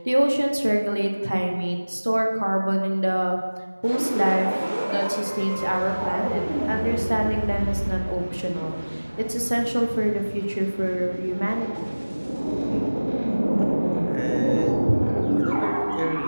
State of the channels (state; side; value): inverted; both; correlation -1.00